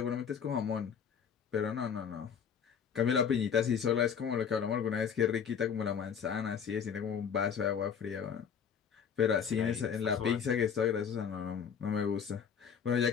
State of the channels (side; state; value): right; quieter; 7.3 dB